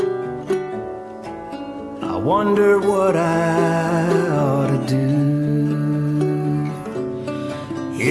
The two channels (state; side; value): identical; both; correlation 1.00